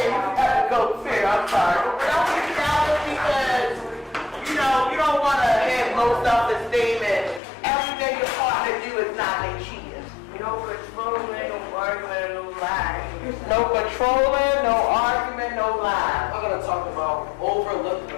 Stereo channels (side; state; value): right; drops out; at 7.4 s